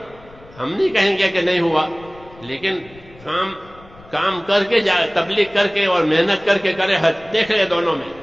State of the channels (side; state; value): left; noise; rumble, 24 dB below the sound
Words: ہم نہیں کہیں گے کہ نہیں ہوا، لیکن کام کر کے تبلیغ کر کے اور محنت کر کے کرے حج. دیکھ لے دونوں میں